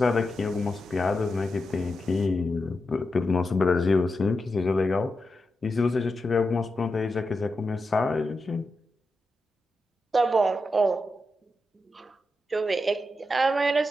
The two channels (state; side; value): normal; both; correlation 0.88